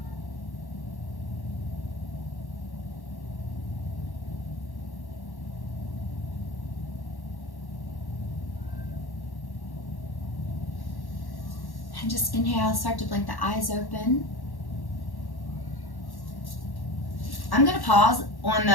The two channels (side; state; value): right; late; 1.1 ms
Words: And just inhale, start to blink the eyes open. I'm going to pause on